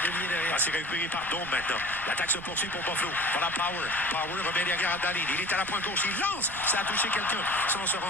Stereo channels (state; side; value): noise; right; rumble, 16 dB below the sound